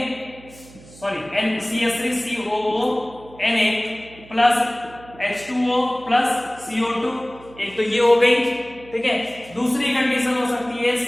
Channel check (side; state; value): right; noise; hum, 21 dB below the sound